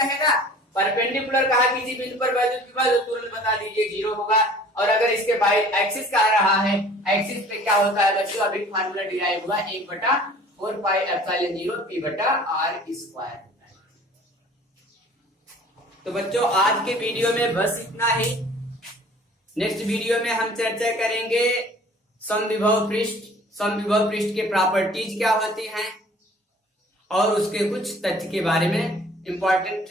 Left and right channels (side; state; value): both; normal; correlation 0.49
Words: परपेंडिकुलर कहा किसी बिंदु पर वैद्युत विभव तो तुरंत बता दीजिए 0 होगा, और अगर इसके बाई एक्सिस कह रहा है, एक्सिस पे क्या होता है बच्चों, अभी फार्मूला डिराइव हुआ 1/4 पाई एप्सिलॉन 0 P/R²। तो बच्चों आज के वीडियो में बस इतना ही। नेक्स्ट वीडियो में हम चर्चा करेंगे समविभव पृष्ठ, समविभव पृष्ठ के प्रॉपर्टीज क्या होती हैं और उसके कुछ तथ्य के बारे में, इंपॉर्टेंट